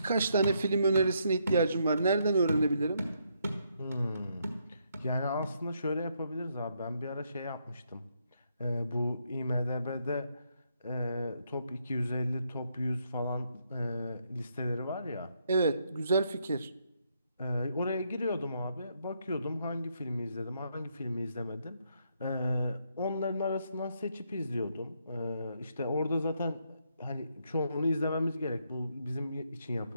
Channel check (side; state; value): both; inverted; correlation -0.76